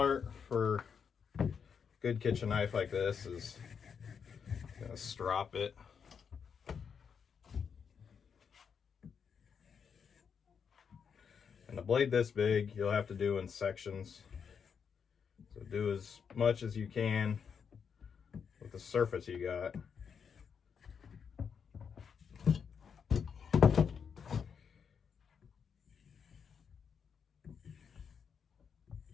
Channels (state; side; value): quieter; right; 6.7 dB